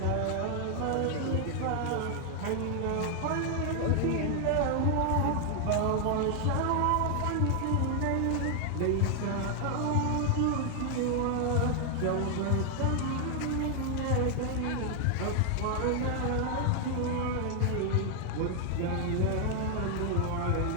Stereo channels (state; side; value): different; both; correlation 0.00